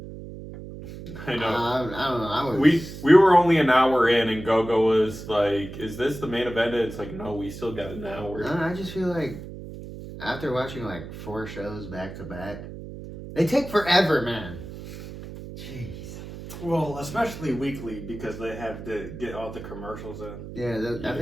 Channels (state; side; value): noise; right; hum, 12 dB below the sound